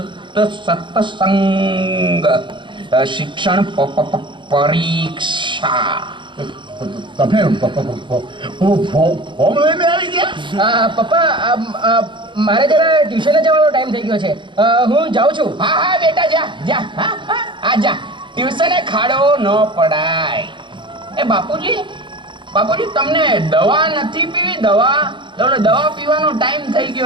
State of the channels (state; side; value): late; left; 0.23 ms